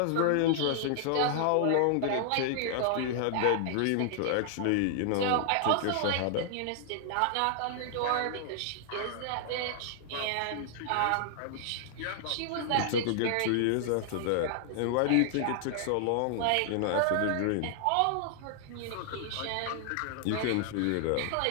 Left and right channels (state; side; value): different; both; correlation -0.01